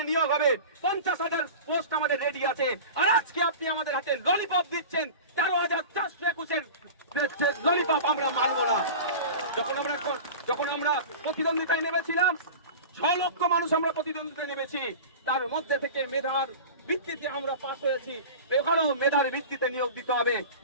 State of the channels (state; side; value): inverted; both; correlation -0.33